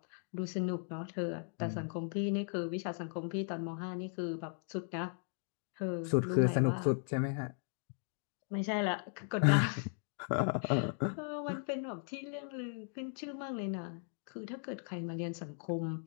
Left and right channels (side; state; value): right; silent; 53 dB below the other